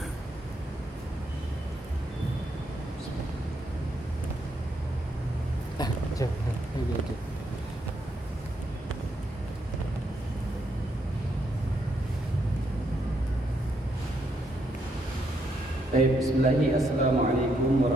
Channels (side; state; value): both; normal; correlation 0.77